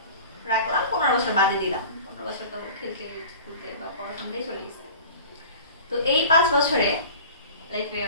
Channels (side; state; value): both; inverted; correlation -0.41